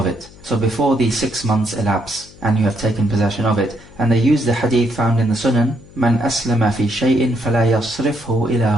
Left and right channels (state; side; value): noise; left; hum, 22 dB below the sound